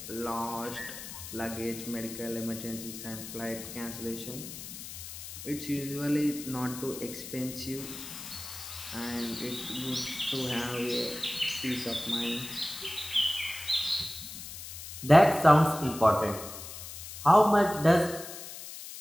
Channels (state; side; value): noise; left; hiss, 11 dB below the sound